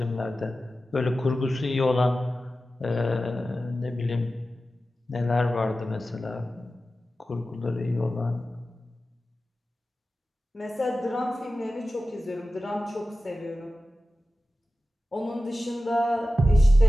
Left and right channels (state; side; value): normal; both; correlation 0.94